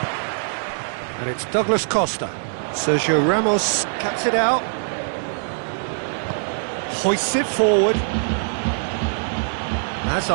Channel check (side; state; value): left; silent; digital silence